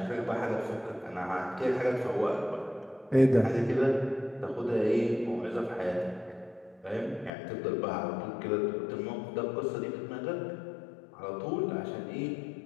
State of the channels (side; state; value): right; drops out; at 7.3 s